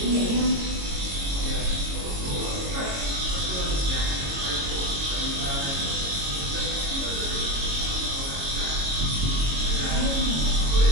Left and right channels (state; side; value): late; left; 22 ms